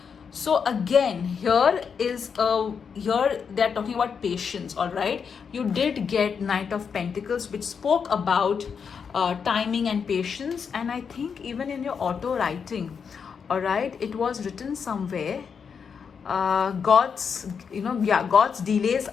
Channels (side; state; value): right; quieter; 6.4 dB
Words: So again, here they're talking about patience. All right, you did get Knight of Pentacles, which spoke about timing and patience. And I think even in your auto writing, all right, it was written somewhere, God's delays